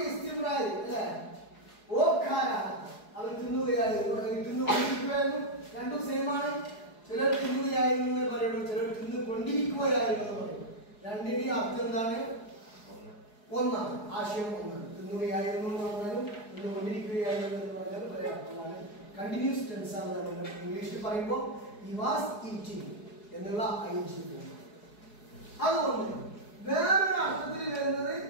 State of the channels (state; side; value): late; right; 4.8 ms